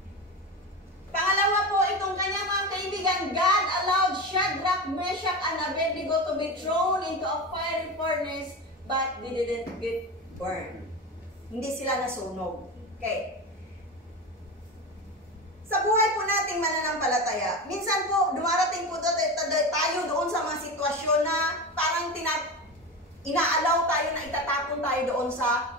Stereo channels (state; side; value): normal; both; correlation 0.24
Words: Pangalawa po, itong kanyang mga kaibigan, God allowed Shadrach, Meshach, and Abednego to be thrown into a fiery furnace, but they didn't get burned. Hindi sila nasunog. Okay. Sa buhay po nating mananampalataya, minsan po, dumarating po tayo doon sa mga sitwasyon na parang inaalaw tayo na itatapon tayo doon sa